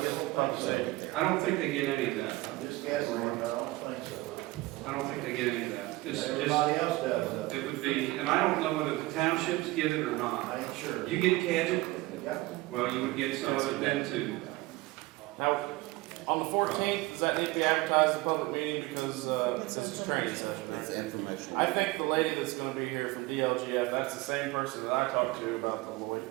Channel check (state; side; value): quieter; left; 20.2 dB